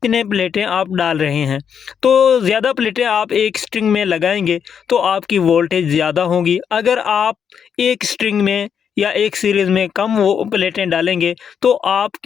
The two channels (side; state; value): right; quieter; 7.6 dB